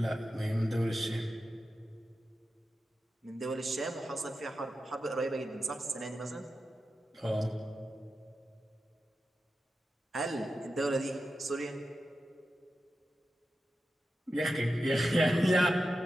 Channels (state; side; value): normal; both; correlation 0.91